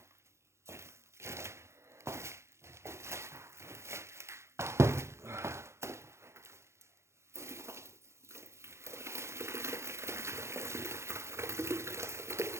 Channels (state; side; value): late; left; 0.13 ms